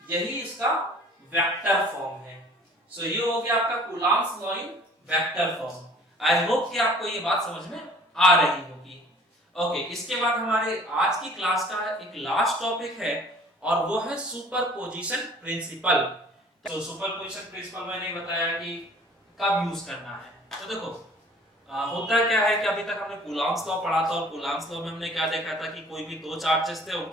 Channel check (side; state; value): both; normal; correlation 0.51